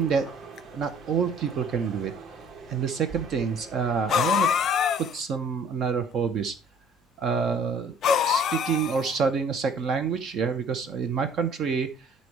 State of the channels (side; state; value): both; normal; correlation 0.54